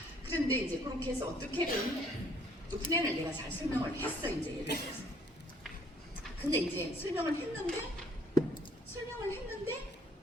그런데 이제 그렇게 해서 어떻게든 또 플랜을 내가 잘 설명을 했어. 이제 예를 들어서. 근데 이제 설명을 했는데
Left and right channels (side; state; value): both; normal; correlation 0.62